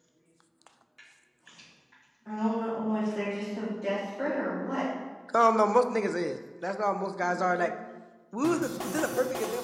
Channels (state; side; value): identical; both; correlation 1.00